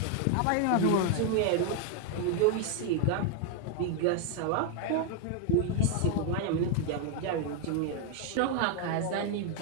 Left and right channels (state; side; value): different; both; correlation 0.01